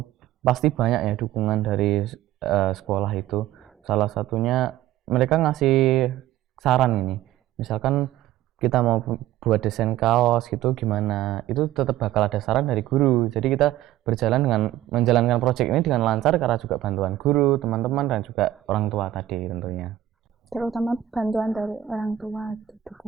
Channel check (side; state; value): left; quieter; 13.0 dB